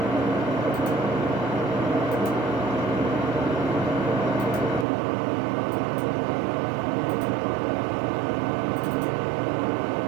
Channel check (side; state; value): left; drops out; at 4.9 s